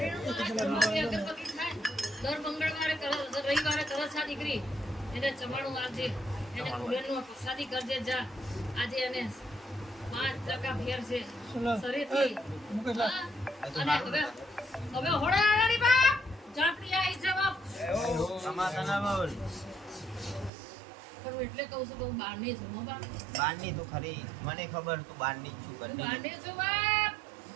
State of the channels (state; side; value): drops out; left; at 20.5 s